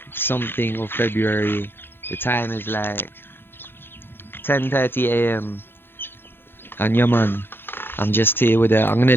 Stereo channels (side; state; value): right; late; 0.10 ms